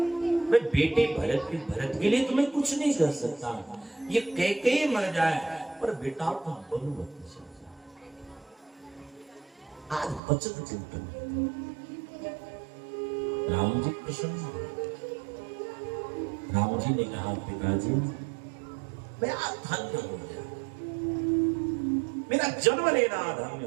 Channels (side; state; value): left; drops out; at 10.2 s